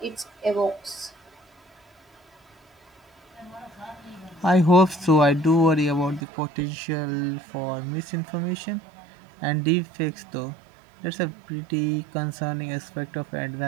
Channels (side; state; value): left; drops out; at 6.2 s